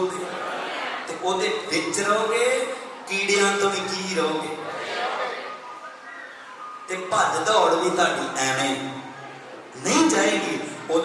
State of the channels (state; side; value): identical; both; correlation 1.00